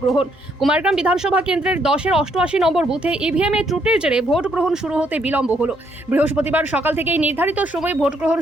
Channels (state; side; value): normal; both; correlation 0.72